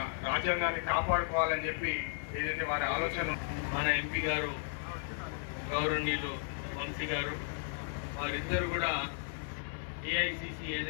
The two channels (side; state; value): right; silent; digital silence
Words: రాజ్యాంగాన్ని కాపాడుకోవాలని చెప్పి ఏదైతే వారి ఆలోచన. మన ఎంపీ గారు గౌరవనీయులు వంశీ గారు వారిద్దరు కూడా ఏఐసిసి